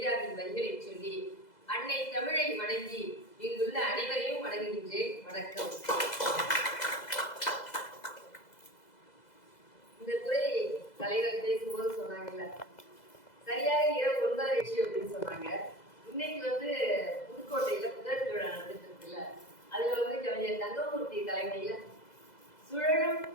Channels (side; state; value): right; late; 2.0 ms